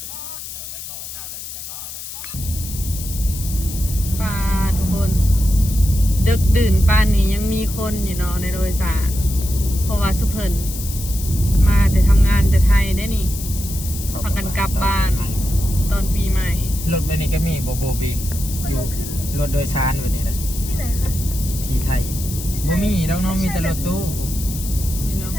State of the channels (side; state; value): left; noise; hiss, 10 dB below the sound